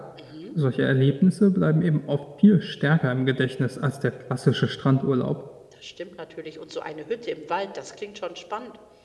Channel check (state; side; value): identical; both; correlation 1.00